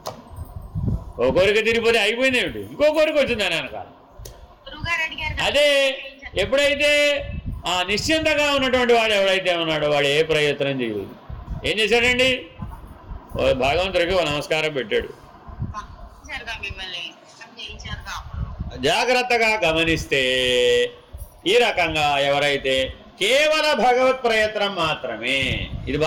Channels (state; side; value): identical; both; correlation 1.00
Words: ఓ కోరిక తీరిపోతే అయిపోయింది ఏమిటి, ఇంకో కోరిక వచ్చిందని అనకాల. అదే ఎప్పుడైతే ఆ నిశ్చింతగా ఉన్నటువంటి వాడు ఎవడైతే ఉన్నాడో వాడు ఏ ప్రయత్నం చేయలేదు. ఏం చేశాడండి, భగవంతుడికి ఓ నమస్కారం పెట్టాడు. జాగ్రత్తగా గమనిస్తే ఈ రకంగా ఎవరైతే కేవల భగవత్ ప్రయత్నం మాత్రమే, ఇది